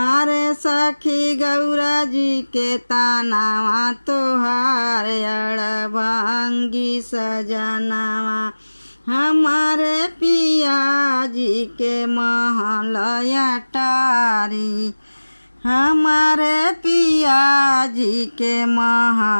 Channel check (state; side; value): inverted; both; correlation -1.00